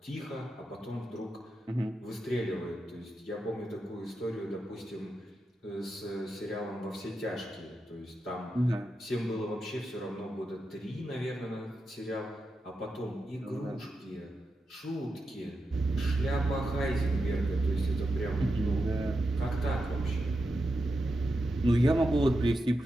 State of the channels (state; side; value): normal; both; correlation 0.88